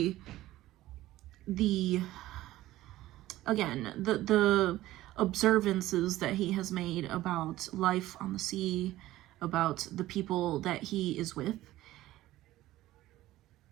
the observances that he has made about life on the sea, about the people that he is with.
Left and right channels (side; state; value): left; quieter; 15.8 dB